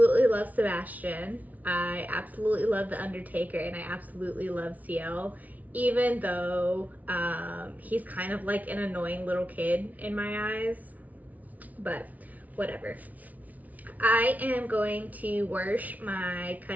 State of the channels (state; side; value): late; left; 0.074 ms